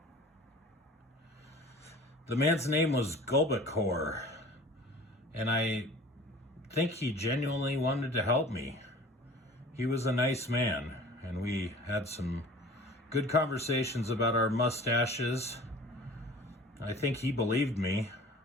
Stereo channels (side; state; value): both; normal; correlation 0.44